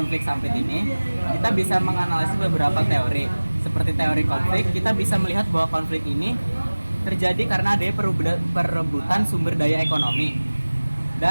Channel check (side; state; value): both; inverted; correlation -1.00